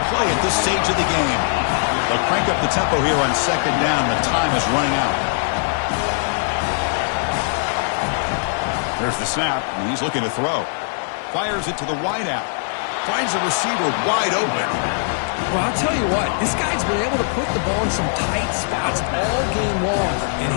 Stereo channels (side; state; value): right; silent; 64 dB below the other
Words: play at this stage of the game. They'll crank up the tempo here on second down. The time is running out. There's the snap, and he's looking to throw. Fires it to the wideout. Finds a receiver wide open. Well, I'll tell you what, this guy's been able to put the ball in some tight spots all game long. And